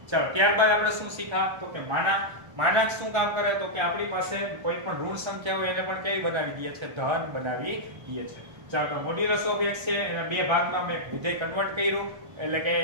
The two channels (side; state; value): left; late; 1.3 ms